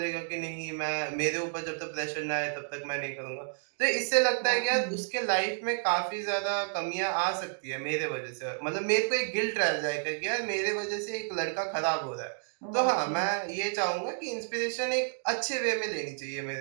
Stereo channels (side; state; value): left; silent; digital silence